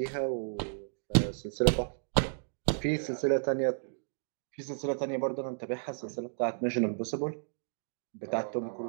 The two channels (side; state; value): left; silent; digital silence